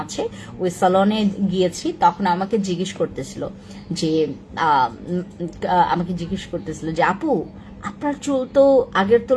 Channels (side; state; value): both; identical; correlation 1.00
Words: আছে, ওই সেলনে গিয়েছি। তখন আমাকে জিজ্ঞেস করতেছিল যে আপু আপনার চুল তো আগের